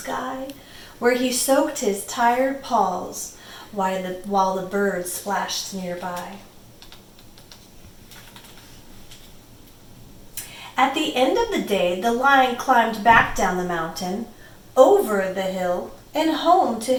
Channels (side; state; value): both; identical; correlation 1.00